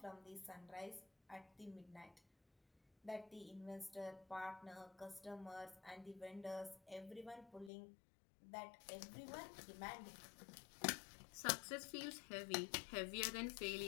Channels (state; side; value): drops out; right; at 7.7 s